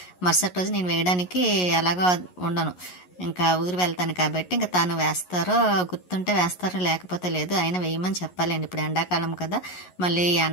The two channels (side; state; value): right; late; 11 ms